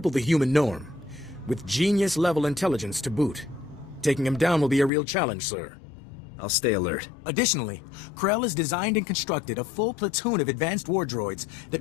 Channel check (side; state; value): right; drops out; at 4.9 s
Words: the human norm, with genius-level intelligence to boot. Taking him down will be a real challenge, sir. I'll stay alert. Additionally, Krell has designed and constructed a full platoon of advanced war droids